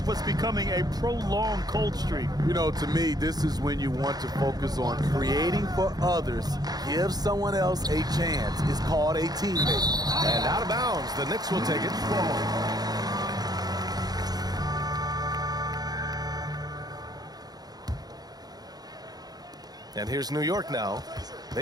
what's becoming a prolonged cold streak. You know, to me, this is when you want to focus on creating for others. Give someone else a chance. It's called a teammate. And out of bounds, the Knicks will take it. And here's New York now.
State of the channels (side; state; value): left; late; 0.19 ms